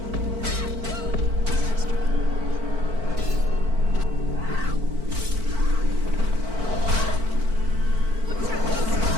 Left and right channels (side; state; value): left; late; 4.5 ms